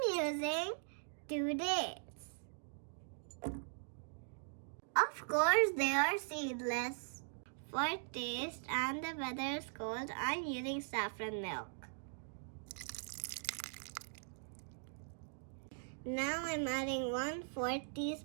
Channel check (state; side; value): silent; left; digital silence